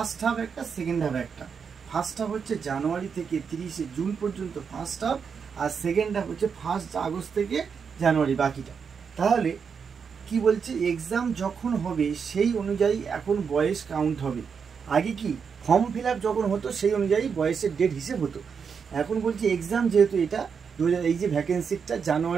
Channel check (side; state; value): left; quieter; 6.3 dB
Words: হাফ একটা, সেকেন্ড হাফ একটা। ফার্স্ট হাফ হচ্ছে জানুয়ারি থেকে 30 জুন পর্যন্ত ফার্স্ট হাফ, আর সেকেন্ড হাফ হচ্ছে 1 আগস্ট থেকে জানুয়ারি বাকিটা। তাহলে কি বলছে, এক্সাম যখন হবে সেই অনুযায়ী এখন বয়স কাউন্ট হবে। আগে কি ফর্ম ফিল আপ যখন হতো সেই অনুযায়ী বয়সের ডেট হিসেব হতো, এখন বলছি এক্সাম যেহেতু এটা এই যে ভ্যাকেন্সিটা